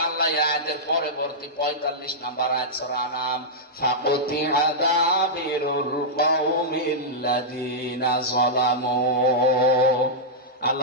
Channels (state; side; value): normal; both; correlation -0.10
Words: আল্লাহ আয়াতের পরবর্তী 45 নম্বর আয়াত সূরা আনাম, ফাকুতিআ দাবিরুল কওমিল্লাযিনা যালামু,